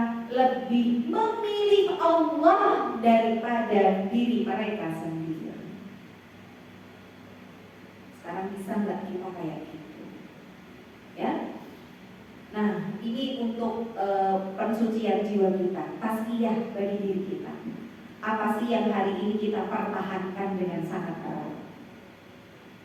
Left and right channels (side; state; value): both; identical; correlation 1.00